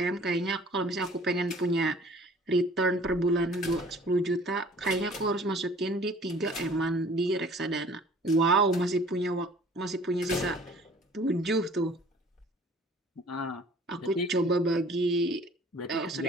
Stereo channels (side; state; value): both; normal; correlation 0.51